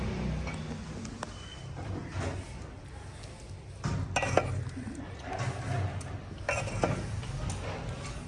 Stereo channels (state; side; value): identical; both; correlation 1.00